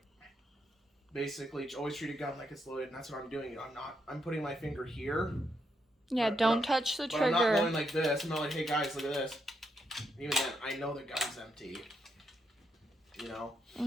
basically, always treat a gun like it's loaded, and that's what I'm doing. I'm putting my finger here. Yeah, don't touch the trigger. I'm not going like this. I'm not like, hey, guys, look at this. Even then, I know the gun's empty.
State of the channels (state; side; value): normal; both; correlation 0.80